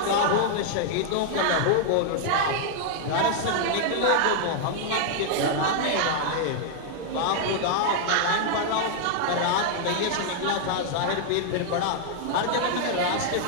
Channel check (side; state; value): both; different; correlation 0.00